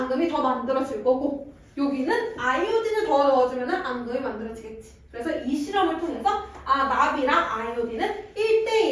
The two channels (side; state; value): both; identical; correlation 1.00